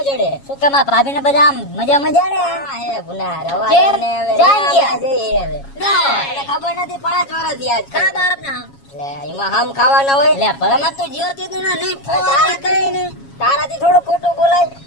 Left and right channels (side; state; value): right; late; 7.3 ms